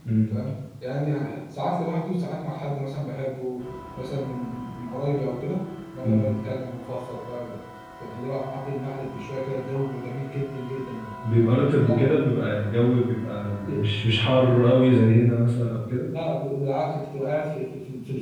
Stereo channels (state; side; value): identical; both; correlation 1.00